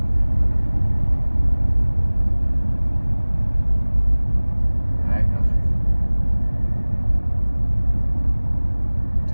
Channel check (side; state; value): both; inverted; correlation -1.00